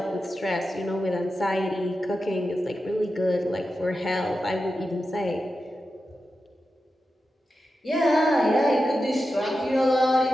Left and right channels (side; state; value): both; normal; correlation 0.91